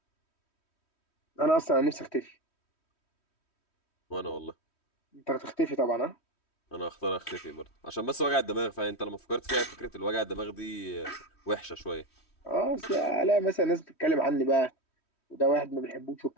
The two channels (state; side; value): late; right; 3.1 ms